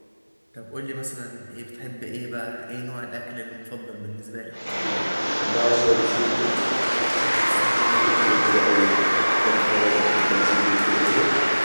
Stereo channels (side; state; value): both; inverted; correlation -1.00